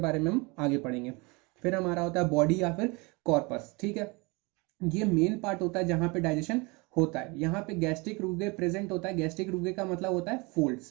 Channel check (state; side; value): quieter; left; 27.3 dB